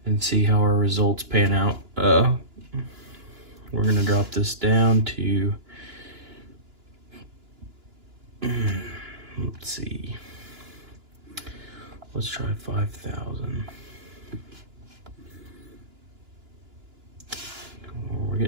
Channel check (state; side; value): late; left; 2.9 ms